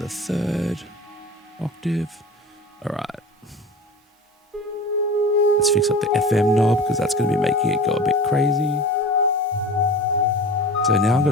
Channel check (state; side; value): normal; both; correlation 0.35